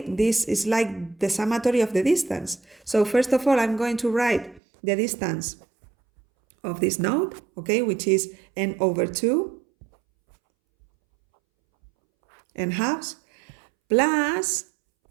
this, is like the summatory of the distance. So first of all, I'm going to write the distance of this node, okay, which is n over 2 n halves, plus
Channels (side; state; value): left; drops out; at 4.6 s